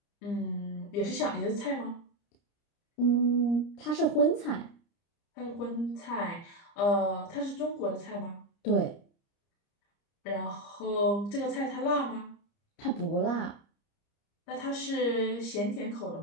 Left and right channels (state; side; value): late; right; 30 ms